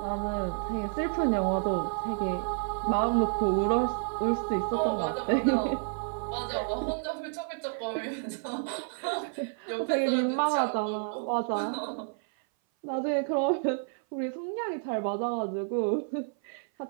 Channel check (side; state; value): left; silent; 57 dB below the other